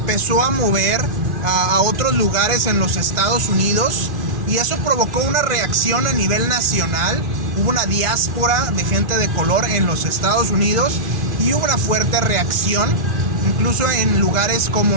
a mover a otros lugares en los Estados Unidos, y eso provocó una reacción a nivel nacional. Hubo una diáspora de gente de color en los Estados Unidos y hubo una fuerte reacción, incluso en lugares como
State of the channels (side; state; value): left; late; 2.4 ms